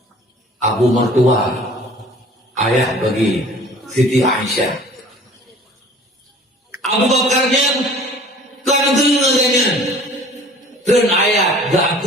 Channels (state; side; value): normal; both; correlation 0.48